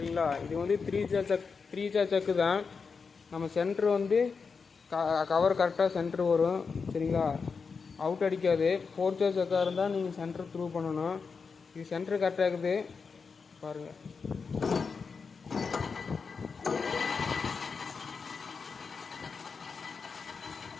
இது வந்து த்ரீ ஜா சக்கு தான். நம்ம சென்ட்ரு வந்து கவர் கரெக்டாக சென்ட்ரு வரும். சரிங்களா, அவுட் அடிக்காது. 4 ஜா சக்காக இருந்தால் நீங்கள் சென்ட்ரு த்ரூ பண்ணணும். இது சென்ட்ரு கரெக்டாக இருக்குது பாருங்கள்.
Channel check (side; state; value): right; quieter; 5.2 dB